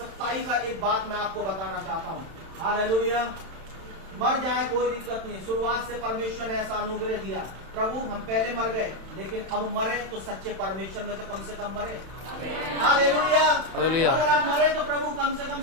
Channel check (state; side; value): late; left; 31 ms